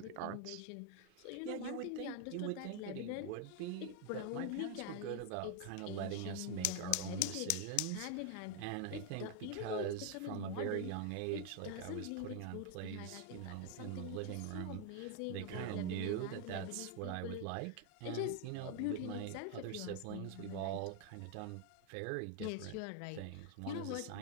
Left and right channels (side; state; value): both; different; correlation 0.01